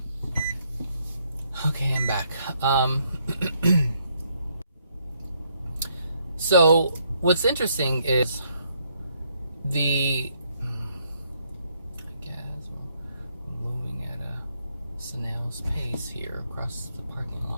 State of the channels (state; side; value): inverted; both; correlation -0.72